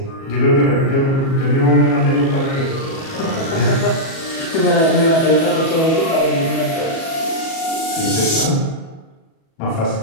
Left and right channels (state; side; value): late; right; 37 ms